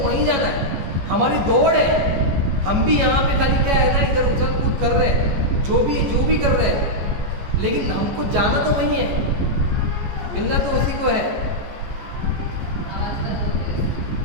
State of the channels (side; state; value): left; late; 14 ms